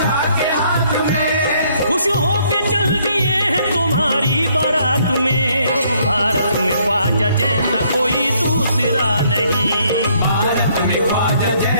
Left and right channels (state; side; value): inverted; both; correlation -0.67